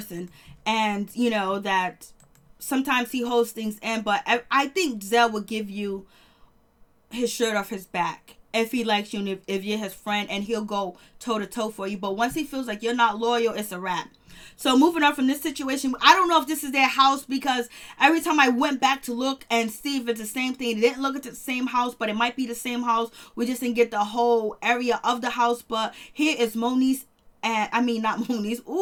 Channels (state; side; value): identical; both; correlation 1.00